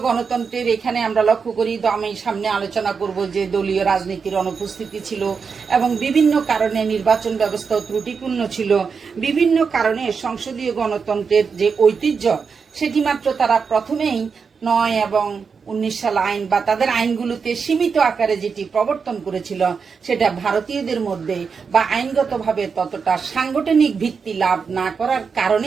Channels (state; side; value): quieter; left; 5.6 dB